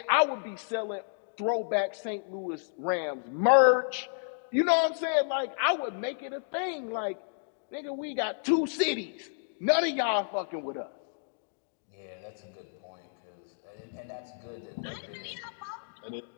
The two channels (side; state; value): right; silent; digital silence